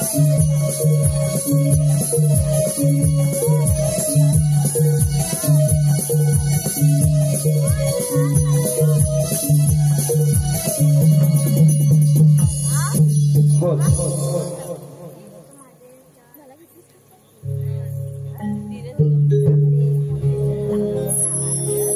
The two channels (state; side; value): identical; both; correlation 1.00